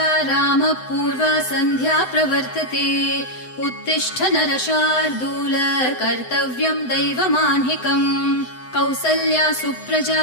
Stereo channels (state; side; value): late; right; 7.9 ms